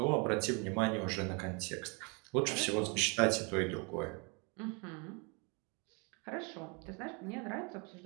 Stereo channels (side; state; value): left; quieter; 32.2 dB